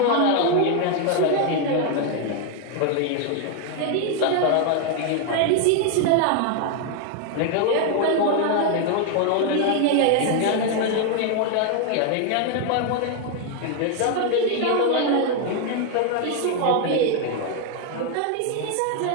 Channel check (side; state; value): both; different; correlation 0.00